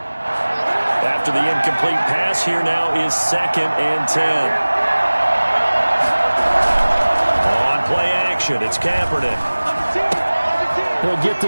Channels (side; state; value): both; inverted; correlation -1.00